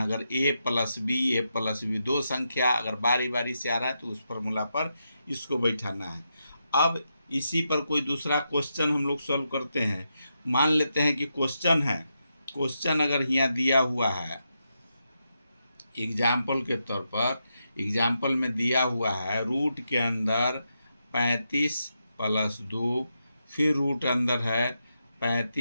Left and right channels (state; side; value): inverted; both; correlation -0.85